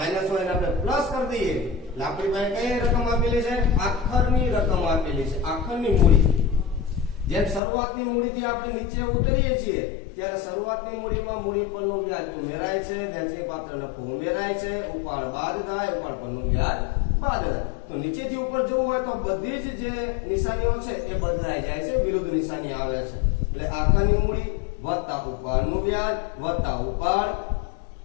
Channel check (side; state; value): right; drops out; at 7.6 s